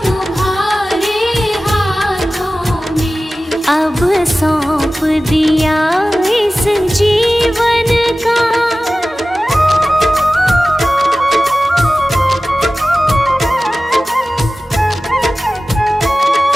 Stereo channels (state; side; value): normal; both; correlation 0.96